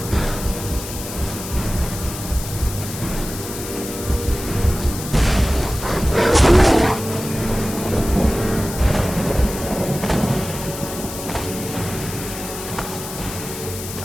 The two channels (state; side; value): noise; left; hiss, 10 dB below the sound